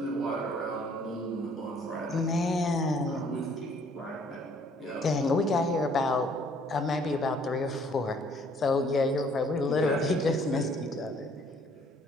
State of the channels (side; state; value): both; normal; correlation 0.61